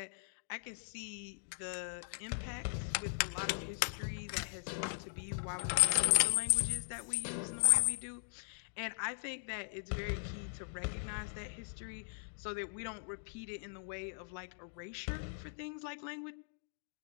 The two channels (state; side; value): silent; right; digital silence